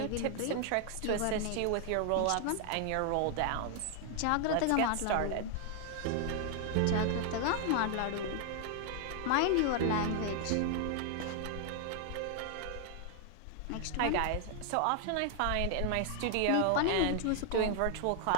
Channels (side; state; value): both; different; correlation 0.00